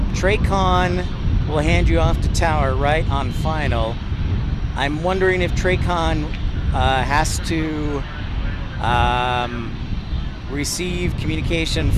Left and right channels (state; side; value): identical; both; correlation 1.00